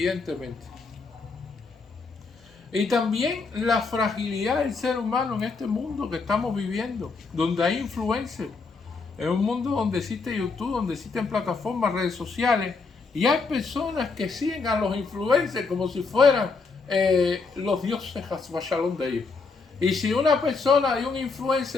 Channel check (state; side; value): quieter; right; 4.4 dB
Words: Y también la fragilidad del ser humano en este mundo que estamos viviendo, donde hay influencers, en un mundo donde existe YouTube, donde existen plataformas, redes sociales, y hay personas que siguen a los influencers como si fueran los dioses Shalom de ellos. Y si una persona y un